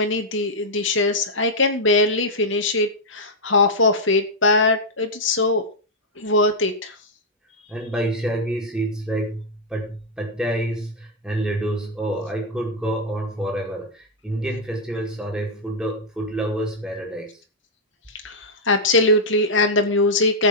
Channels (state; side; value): normal; both; correlation -0.04